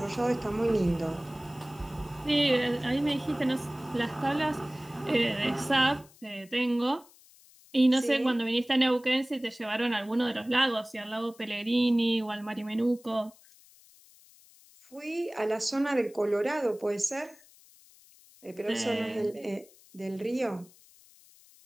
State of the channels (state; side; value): noise; left; hiss, 26 dB below the sound